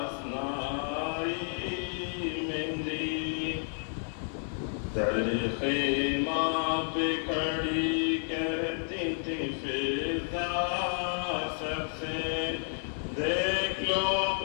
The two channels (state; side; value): silent; right; digital silence